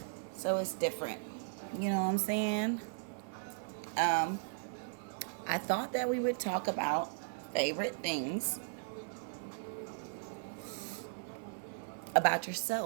So it's different. You know what I'm saying? Um, I thought that we would talk about favorite things about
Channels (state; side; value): silent; left; 53 dB below the other